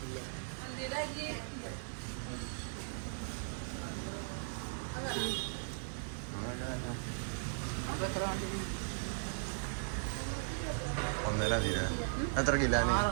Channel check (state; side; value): silent; left; digital silence